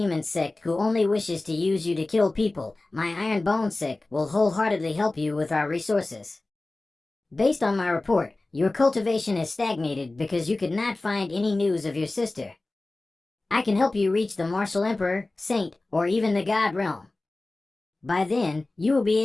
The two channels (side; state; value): right; quieter; 3.0 dB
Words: Sect who only wishes to use you to kill people, my Iron Bone Sect will wholeheartedly help you with our resources. Based on my report, your cultivation has stagnated because you could not find any news of your sister. I can help you reach the Martial Emperor, Saint, or even the God Realm. By then, you will be